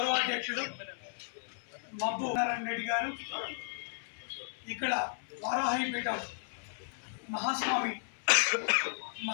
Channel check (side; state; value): right; silent; 55 dB below the other